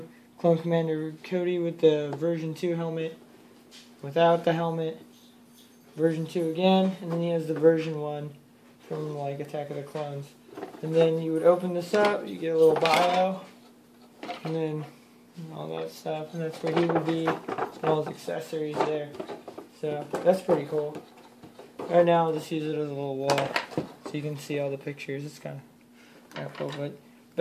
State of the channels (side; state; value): both; identical; correlation 1.00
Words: Clone Commander Cody with the version 2 helmet. Without the helmet. Version 2 again. And then he has the version 1 from like Attack of the Clones. And then you would open this up, you get a little bio, and then all that stuff, and that's where he would be, and all his accessories there. So, that's pretty cool. Right now, I'll just use it as a little wall, so you can see all the pictures. It's kind of cool, but